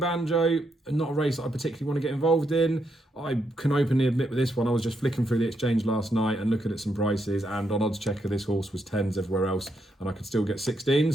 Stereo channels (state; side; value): normal; both; correlation 0.79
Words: not a race that I particularly want to get involved in. I can openly admit with this one, I was just flicking through the exchange last night and looking at some prices, and on Odds Checker, this horse was 10s everywhere else, and I could still get 16s,